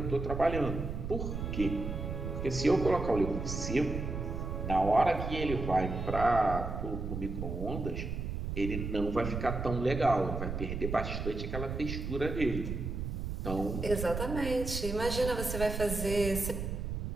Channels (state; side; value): noise; right; rumble, 4 dB below the sound